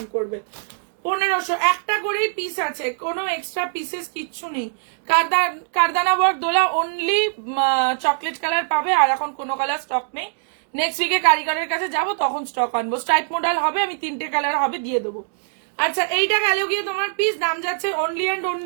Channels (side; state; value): left; silent; digital silence